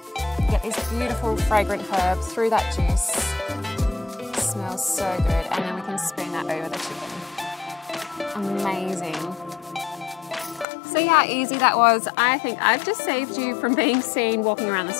You get these beautiful fragrant herbs through that juice. It smells so good, and then we can spoon that over the chicken. Amazing. See how easy that was? I think I've just saved you from being seen walking around the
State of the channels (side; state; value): right; drops out; at 10.7 s